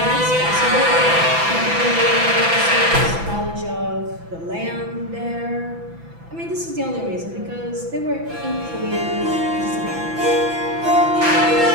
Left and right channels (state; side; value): late; left; 6.0 ms